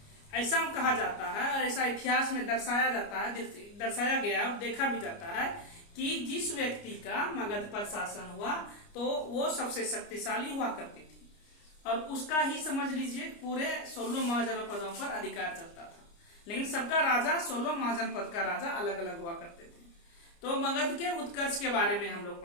ऐसा कहा जाता है और ऐसा इतिहास में दर्शाया गया और देखा भी जाता है कि जिस व्यक्ति का मगध पर शासन हुआ तो वो सबसे शक्तिशाली हुआ करती थी और उसका ही समझ लीजिए पूरे 16 महाजनपदों पर अधिकार चलता था। लेकिन सबका राजा 16 महाजनपद का राजा अलग अलग हुआ करते थे। तो मगध के उत्कर्ष के बारे में हम लोग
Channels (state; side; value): late; right; 29 ms